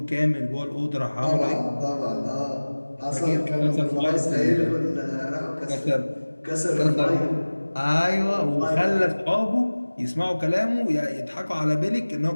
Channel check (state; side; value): inverted; both; correlation -1.00